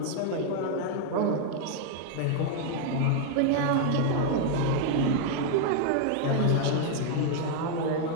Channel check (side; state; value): both; different; correlation 0.00